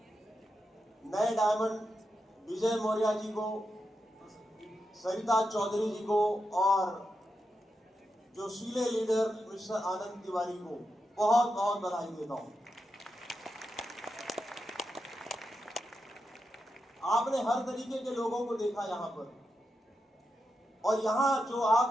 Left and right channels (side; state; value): both; normal; correlation 0.87